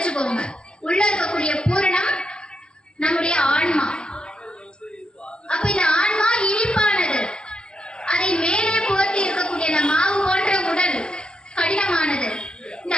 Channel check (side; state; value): right; late; 0.048 ms